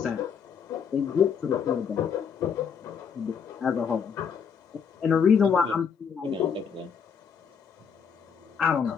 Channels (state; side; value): quieter; right; 6.8 dB